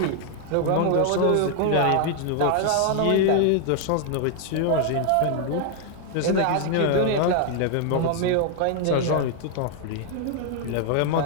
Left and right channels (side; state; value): both; different; correlation 0.00